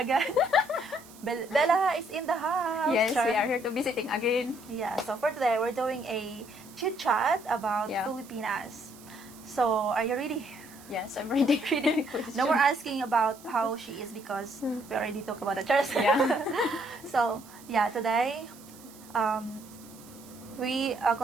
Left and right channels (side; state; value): right; noise; hiss, 21 dB below the sound